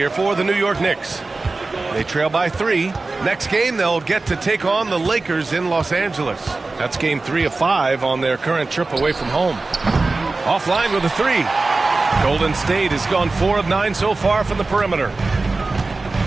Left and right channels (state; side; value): quieter; left; 3.5 dB